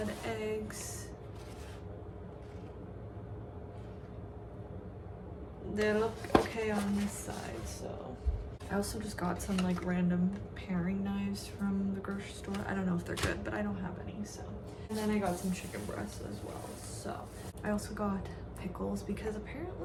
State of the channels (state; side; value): identical; both; correlation 1.00